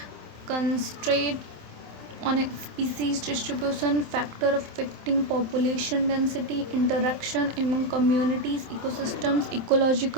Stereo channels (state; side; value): late; left; 27 ms